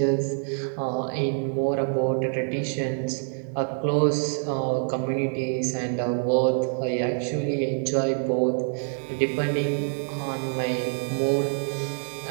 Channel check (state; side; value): silent; left; 55 dB below the other